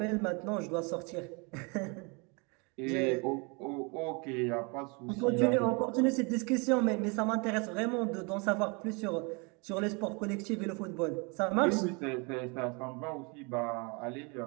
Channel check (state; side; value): quieter; left; 31.4 dB